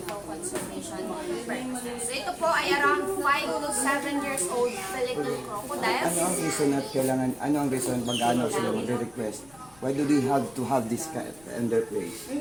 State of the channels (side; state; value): left; noise; rumble, 26 dB below the sound